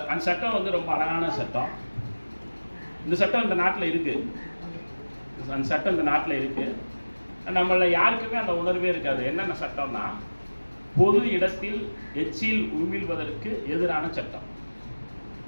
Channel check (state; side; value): inverted; both; correlation -1.00